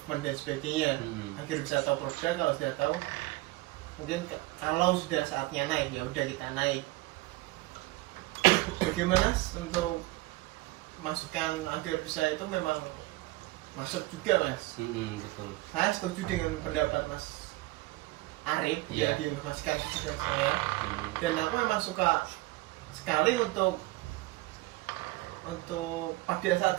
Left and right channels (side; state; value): left; quieter; 20.5 dB